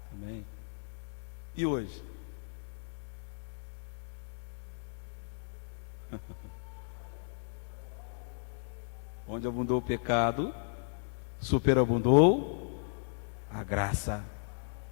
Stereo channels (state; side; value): silent; right; digital silence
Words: Também. E hoje? Onde abundou o pecado, superabundou a graça.